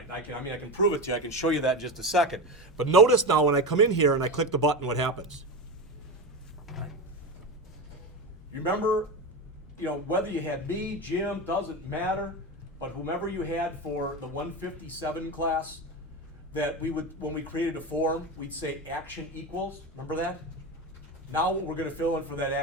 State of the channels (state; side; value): normal; both; correlation 0.20